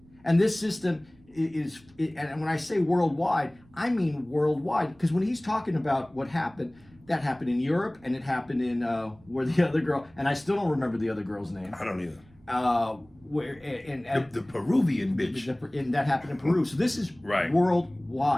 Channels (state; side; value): noise; right; rumble, 28 dB below the sound